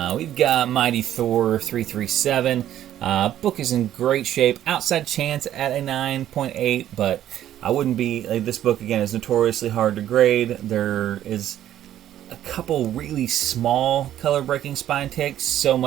We've got Mighty Thor 337. Book is in great shape. Outside chance at a 9.8, but I wouldn't be this book again is notoriously hard to grade. There is a couple really small color breaking spine ticks, so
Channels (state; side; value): quieter; left; 11.8 dB